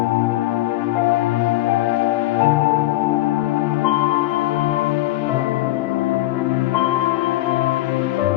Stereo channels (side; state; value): right; quieter; 17.3 dB